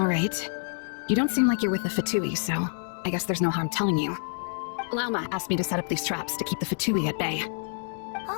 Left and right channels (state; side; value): silent; right; 60 dB below the other